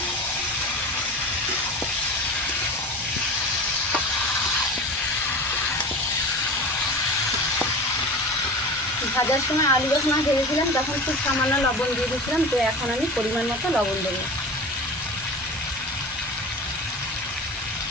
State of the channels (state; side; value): normal; both; correlation 0.33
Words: ভাজার সময় আলু যখন ভেজেছিলাম তখন খুব সামান্য লবণ দিয়ে দিয়েছিলাম, তো এখন আমি পরিমাণ মতো লবণ দেবো।